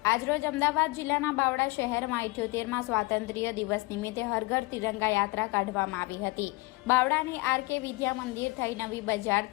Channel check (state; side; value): quieter; right; 23.3 dB